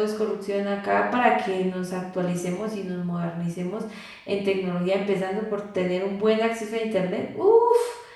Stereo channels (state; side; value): identical; both; correlation 1.00